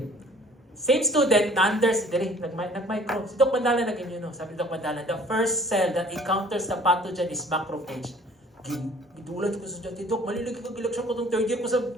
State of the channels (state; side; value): normal; both; correlation 0.53